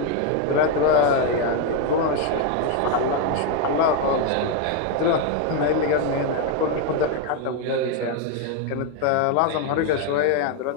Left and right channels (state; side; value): different; both; correlation 0.01